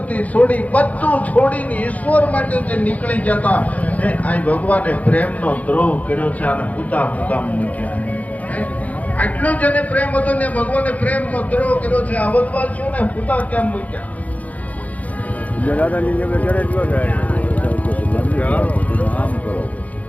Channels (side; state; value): right; late; 0.072 ms